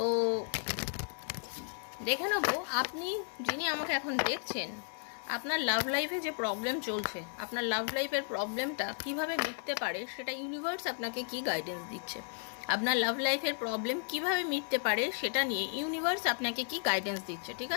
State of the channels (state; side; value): silent; right; 55 dB below the other